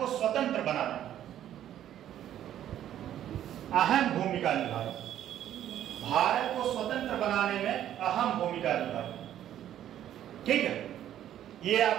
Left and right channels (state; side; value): quieter; left; 11.3 dB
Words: स्वतंत्र बनाने में अहम भूमिका निभाई। भारत को स्वतंत्र बनाने में अहम भूमिका निभाई। ठीक है, ये